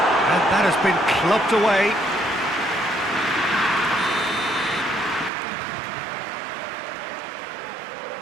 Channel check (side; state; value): left; drops out; at 5.3 s